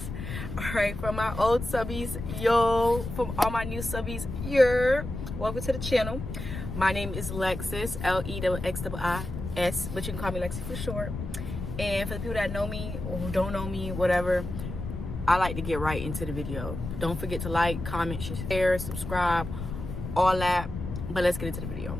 All right, from my old subbies, yo, from all my new subbies, welcome to the channel. My name is Lexis, Lexxiis, but you can call me Lexi for short. And for the people that know me or who don't know me, whatever, I like to get right into the video. Don't forget to like, comment, share, subscribe, all that. But let's get into the video.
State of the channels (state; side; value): noise; left; rumble, 7 dB below the sound